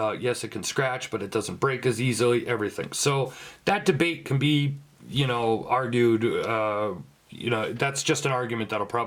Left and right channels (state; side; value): identical; both; correlation 1.00